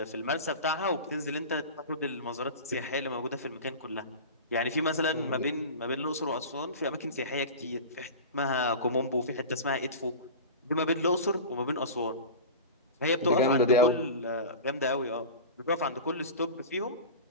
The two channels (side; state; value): both; inverted; correlation -0.31